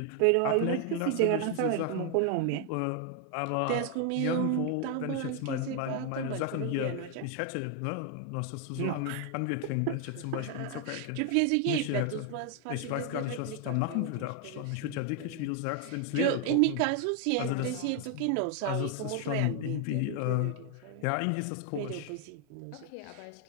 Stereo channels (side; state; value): both; different; correlation 0.00